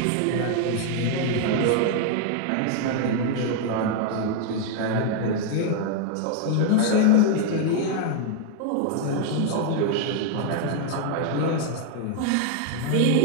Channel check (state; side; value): different; both; correlation 0.00